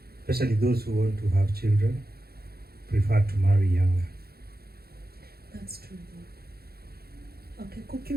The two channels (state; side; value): late; left; 0.45 ms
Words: especially those who want to have children, prefer to marry younger. That's true. Okay,